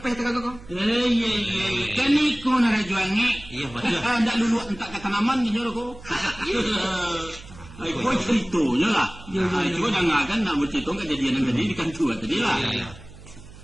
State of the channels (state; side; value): noise; right; hum, 18 dB below the sound